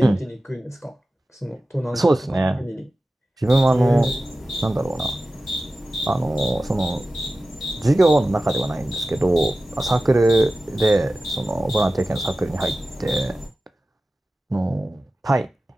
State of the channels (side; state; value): both; normal; correlation 0.95